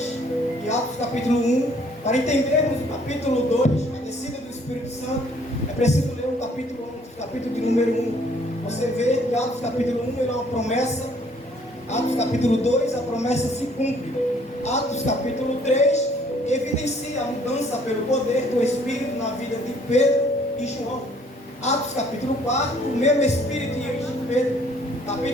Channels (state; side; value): normal; both; correlation 0.61